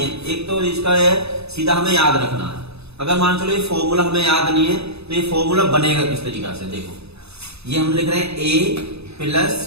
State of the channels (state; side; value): late; left; 0.79 ms